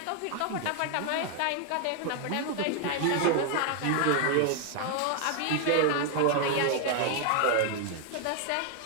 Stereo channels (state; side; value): different; both; correlation 0.00